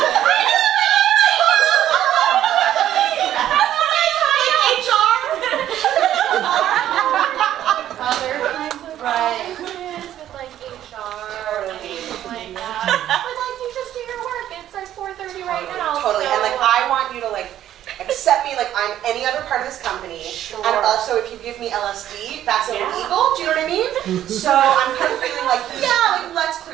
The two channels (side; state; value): left; quieter; 11.8 dB